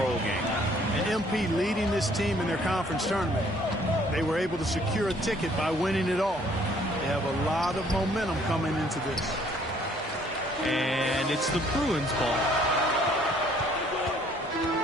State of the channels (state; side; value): normal; both; correlation 0.61